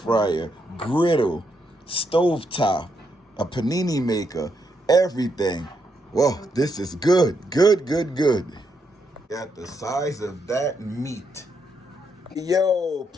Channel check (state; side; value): normal; both; correlation 0.78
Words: griddle, stovetop, a panini maker, everything. Whoa, this is good. Good, good, good. Got the size of that meat. Yo,